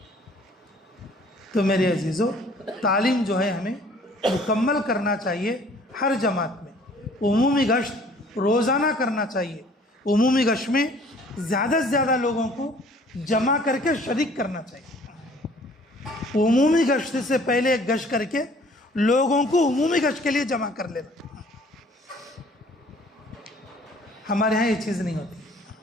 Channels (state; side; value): normal; both; correlation 0.55